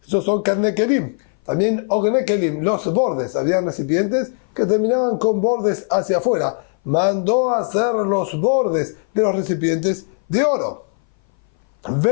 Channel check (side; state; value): right; silent; 59 dB below the other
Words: Esos son karne kelim. También ogne kelim, los bordes. Habían recipientes que terminaban con bordes hacia afuera. Mandó a hacer los bordes de los recipientes de oro.